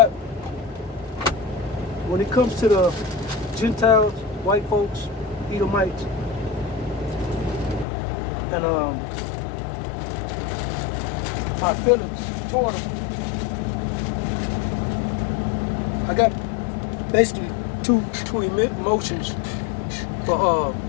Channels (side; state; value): right; drops out; at 7.9 s